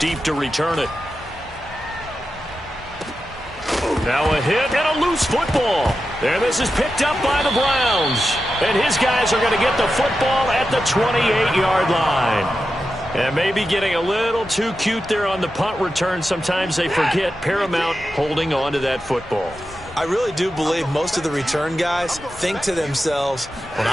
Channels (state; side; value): normal; both; correlation 0.90